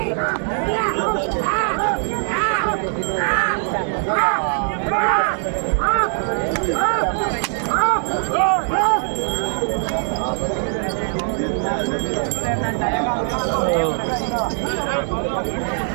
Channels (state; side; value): silent; left; 61 dB below the other